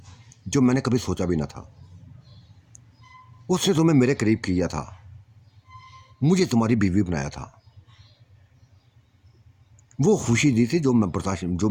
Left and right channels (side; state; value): both; identical; correlation 1.00